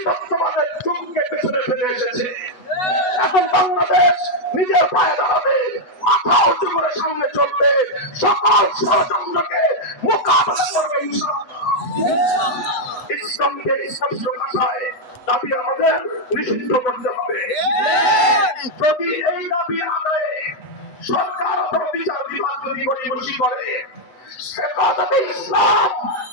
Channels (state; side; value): late; right; 8.1 ms